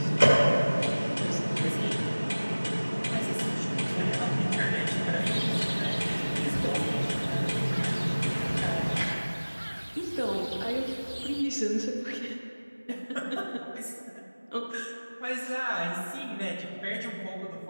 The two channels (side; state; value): both; inverted; correlation -1.00